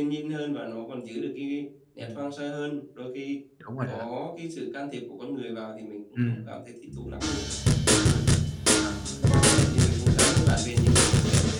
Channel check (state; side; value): identical; both; correlation 1.00